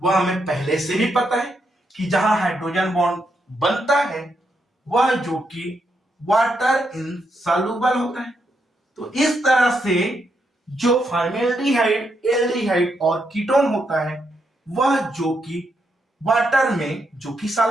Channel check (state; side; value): normal; both; correlation 0.80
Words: हमें पहले से भी पता है कि जहां हाइड्रोजन बॉन्ड बनता है वह जो कि वाटर इनसॉल्युबल होता है। तो इस तरह से जो फॉर्मेल्डिहाइड, एल्डिहाइड और कीटोन होता है वह जो कि वाटर में जो कि